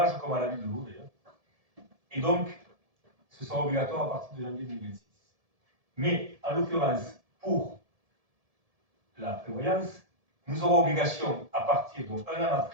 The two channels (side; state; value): left; late; 1.7 ms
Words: comme à la ville de l'eau d'ailleurs. Et donc, ce sera obligatoire à partir de janvier 2026. Mais, en l'occurrence, pour la prévoyance, nous aurons obligation, à partir d'un an